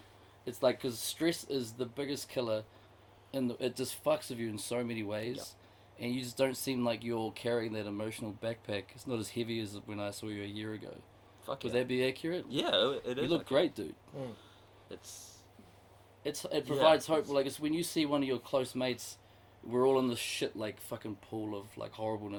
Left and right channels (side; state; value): both; identical; correlation 1.00